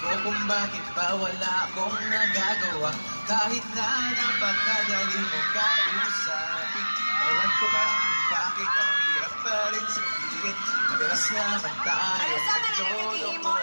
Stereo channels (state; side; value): inverted; both; correlation -1.00